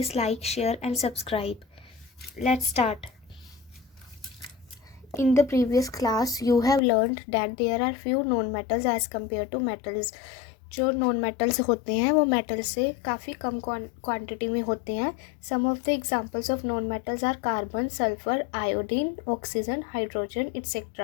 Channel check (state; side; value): drops out; right; at 6.8 s